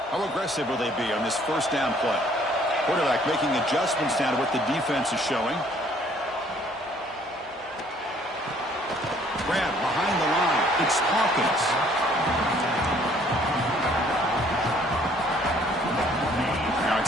How aggressive will they be on this first down play? Quarterback making adjustments down to what the defense is showing. Grab behind the line. It's Hawkins. Now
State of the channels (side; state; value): both; normal; correlation 0.60